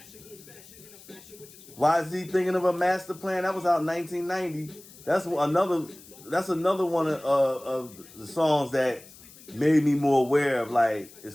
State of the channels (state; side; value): noise; left; hiss, 21 dB below the sound